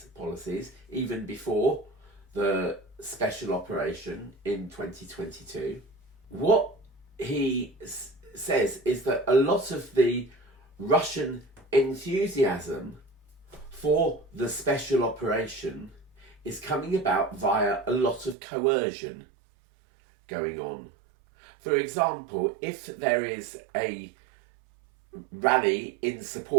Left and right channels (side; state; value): left; drops out; at 18.4 s